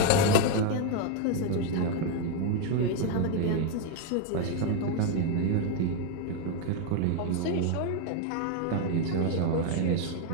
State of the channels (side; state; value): both; different; correlation 0.01